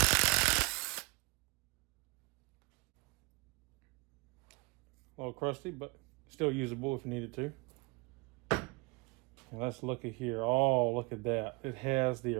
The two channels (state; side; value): quieter; left; 27.2 dB